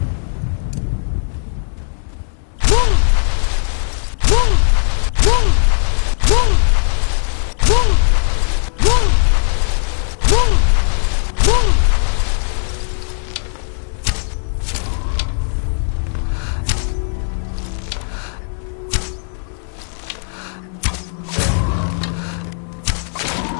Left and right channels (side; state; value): right; silent; digital silence